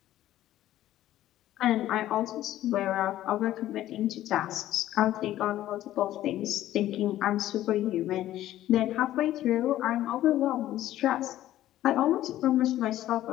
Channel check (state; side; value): quieter; right; 13.7 dB